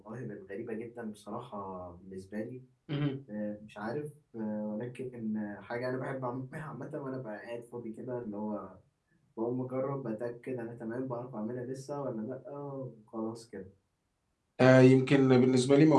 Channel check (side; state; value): both; identical; correlation 1.00